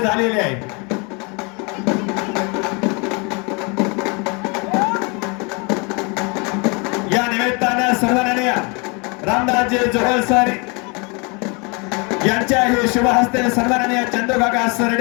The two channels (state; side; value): quieter; right; 31.1 dB